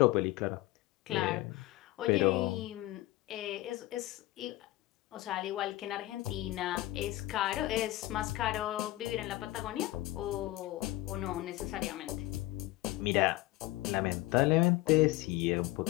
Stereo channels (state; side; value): quieter; right; 17.8 dB